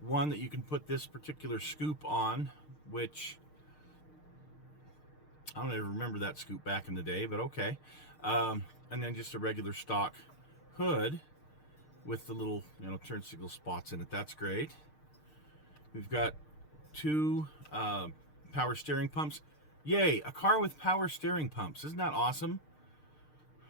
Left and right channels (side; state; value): right; late; 6.6 ms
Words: that you can put this particular scoop on, which I don't ever remember that scoop back in the day, but okay. And then just a regular stock hood with the little, turn signal spots in it. That's great. We've got 2 power steering pumps. Yay, a car with power steering pumps. Isn't that awesome?